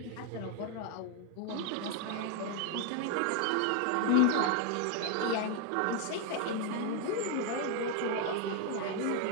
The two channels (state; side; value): different; both; correlation 0.00